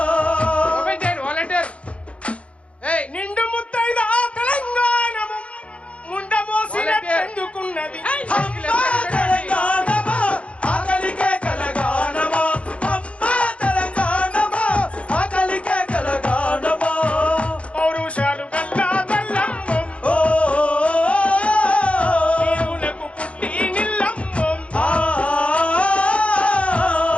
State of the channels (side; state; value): right; late; 0.062 ms